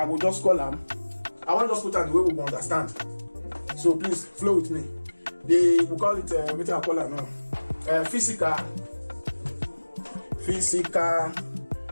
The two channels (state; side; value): inverted; both; correlation -1.00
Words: will just call them. I want to just put out the way we will understand. So please flow with me. We call it what I call it now. Physical